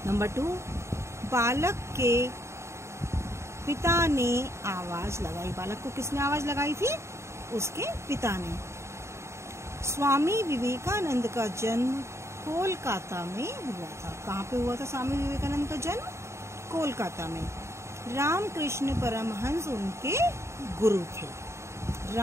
नंबर 2, बालक के पिता ने आवाज लगाई। बालक को किसने आवाज लगाई थी? उसके पिता ने। स्वामी विवेकानंद का जन्म कोलकाता में हुआ था। कहाँ पे हुआ था स्वामी विवेकानंद का जन्म? कोलकाता में। रामकृष्ण परमहंस उनके गुरु थे।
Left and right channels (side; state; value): left; late; 0.13 ms